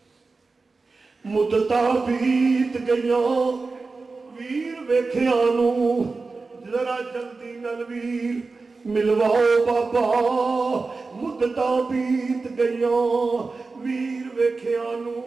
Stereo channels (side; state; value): left; quieter; 4.0 dB